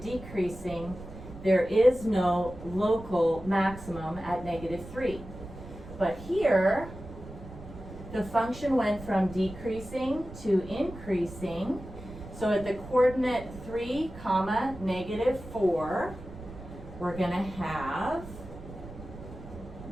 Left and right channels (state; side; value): noise; right; rumble, 14 dB below the sound